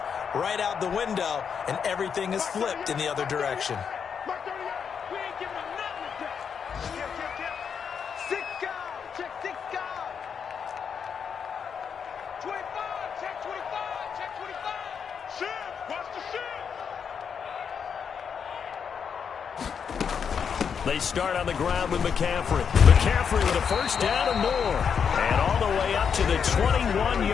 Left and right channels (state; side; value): quieter; right; 6.9 dB